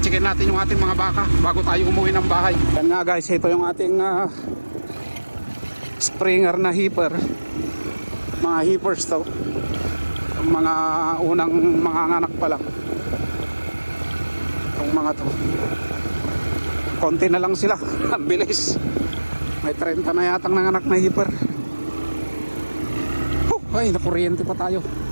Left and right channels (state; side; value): inverted; both; correlation -1.00